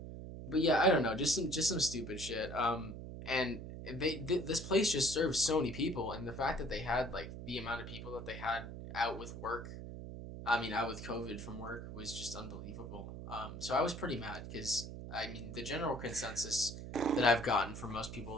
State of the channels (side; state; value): right; noise; hum, 9 dB below the sound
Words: But yeah, I don't know, just some stupid shit. And this place just serves so many people, and the fact that they had like the amount of people that they had out with COVID from work was just unbelievable. So I was pretty mad because I mean the general consensus that I've gotten from most